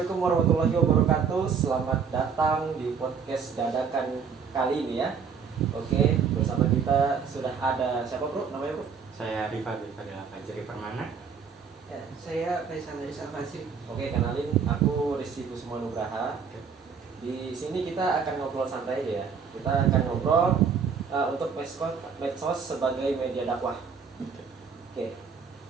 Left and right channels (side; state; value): left; quieter; 6.2 dB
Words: warahmatullahi wabarakatuh. Selamat datang di podcast dadakan kali ini ya. Oke, bersama kita sudah ada siapa bro? Namanya bro? Saya Rifa Fadila Fajri Permana. Ya, saya Faisal dari Salvasi. Oke, kenalin aku Rizky Kusuma Nugraha. Di sini kita akan ngobrol santai aja ya. Kita akan ngobrol untuk medsos sebagai media dakwah. Oke.